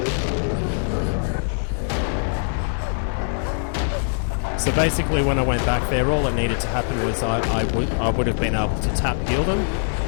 So basically when I went back there, all that needed to happen was I would have been able to tap heal them.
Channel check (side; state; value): right; silent; digital silence